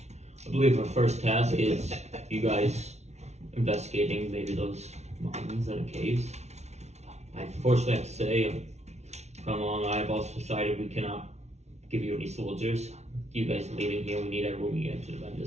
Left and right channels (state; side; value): late; left; 0.32 ms